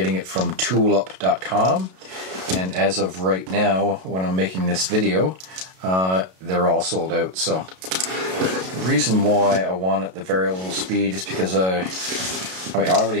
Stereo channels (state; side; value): late; left; 32 ms